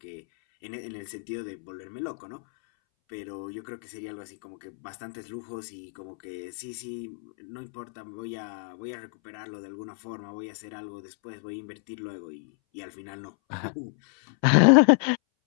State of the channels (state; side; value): silent; right; 58 dB below the other